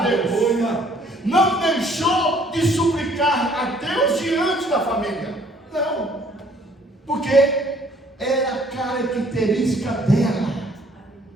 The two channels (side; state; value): both; normal; correlation 0.60